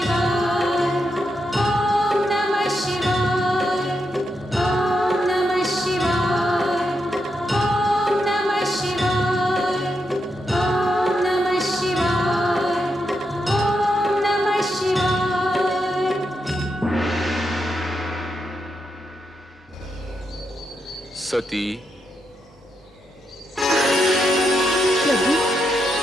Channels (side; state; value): both; normal; correlation 0.83